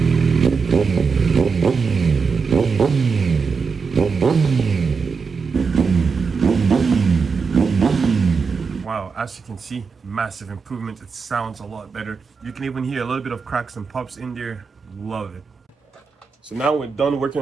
Wow, as you can see, massive improvement. It sounds a lot better. You can even hear a little bit of cracks and pops in there. Love it. So now we're done working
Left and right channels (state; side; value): quieter; left; 5.3 dB